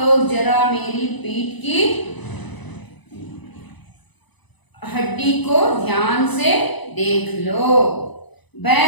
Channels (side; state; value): right; late; 1.0 ms